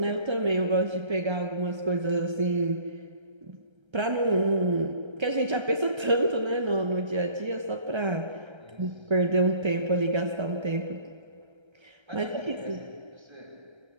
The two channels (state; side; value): late; left; 1.3 ms